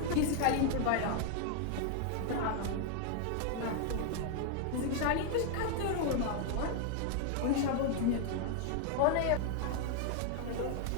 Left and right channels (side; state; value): both; different; correlation 0.00